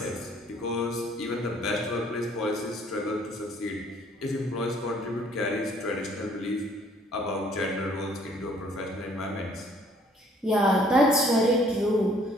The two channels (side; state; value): both; normal; correlation 0.60